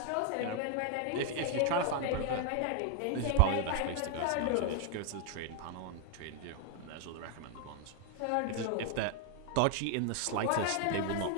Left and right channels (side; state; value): both; different; correlation 0.00